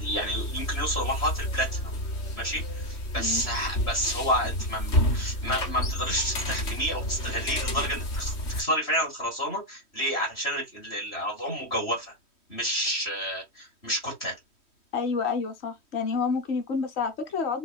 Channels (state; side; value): late; right; 3.1 ms